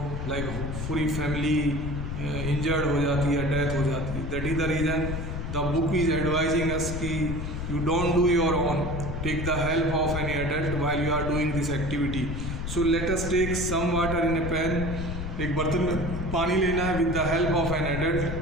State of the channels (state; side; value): noise; left; rumble, 4 dB below the sound